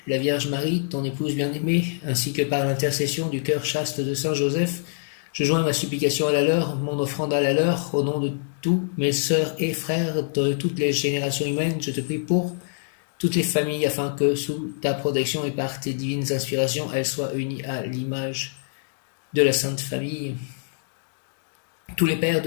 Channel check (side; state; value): right; silent; digital silence